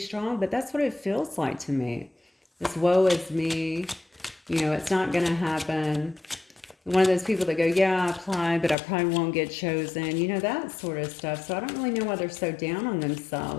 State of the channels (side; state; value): right; drops out; at 8.8 s